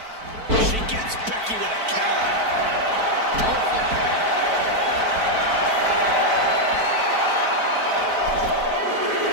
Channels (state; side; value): late; left; 4.5 ms